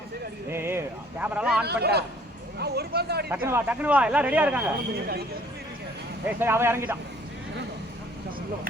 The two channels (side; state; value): both; normal; correlation 0.57